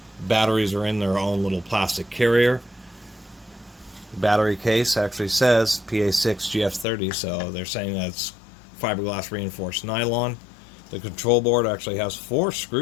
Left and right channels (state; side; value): drops out; right; at 6.9 s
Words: Batteries are in their own little plastic carrier. Battery case actually says PA6 GF30, so they're saying that's fiberglass reinforced nylon. The control board actually has 4